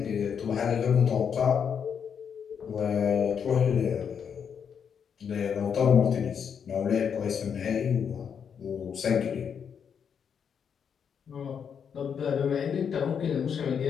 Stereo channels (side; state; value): right; quieter; 7.3 dB